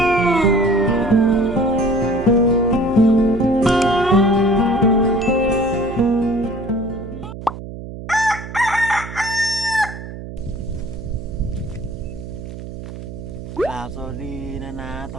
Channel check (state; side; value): noise; right; hum, 11 dB below the sound